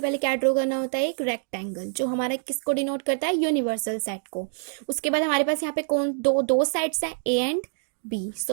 क्या ड्रॉ करना होता है, एक रेक्टेंगल जो हमारा किसको डिनोट करता है, यूनिवर्सल सेट को। उसके बाद हमारे पास यहाँ पे कौन दो साइड्स हैं, ए एंड बी।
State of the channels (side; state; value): left; silent; digital silence